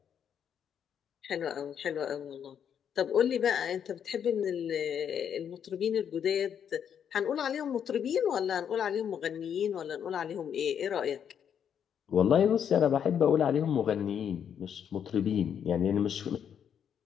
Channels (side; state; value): right; quieter; 8.4 dB